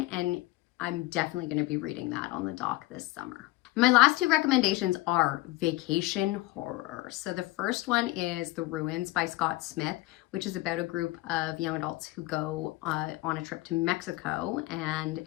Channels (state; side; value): quieter; right; 19.4 dB